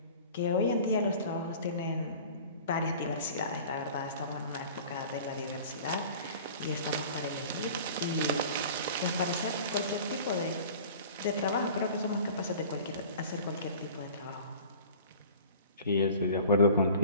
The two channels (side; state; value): both; inverted; correlation -0.44